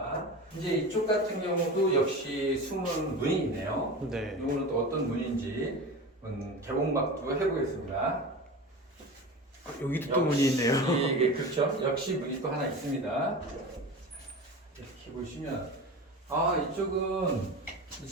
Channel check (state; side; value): normal; both; correlation 0.30